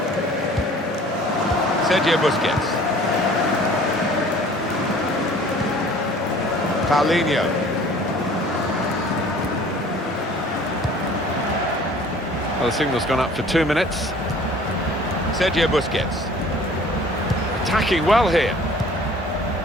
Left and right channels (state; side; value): normal; both; correlation 0.50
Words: Sergio Busquets. Paulinho. Well, the signal's gone up for 2 minutes. Sergio Busquets. Attacking well here.